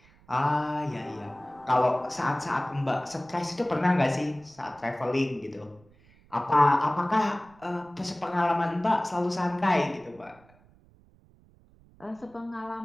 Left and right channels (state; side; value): noise; right; rumble, 28 dB below the sound